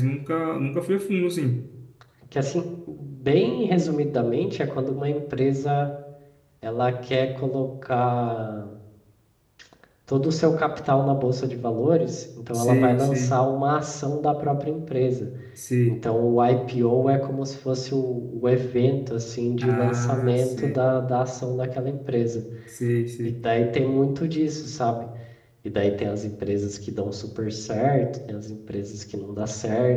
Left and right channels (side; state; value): both; identical; correlation 1.00